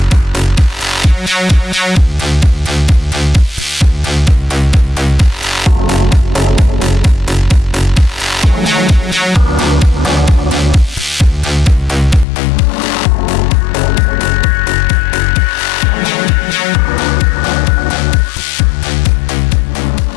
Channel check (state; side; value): drops out; right; at 12.2 s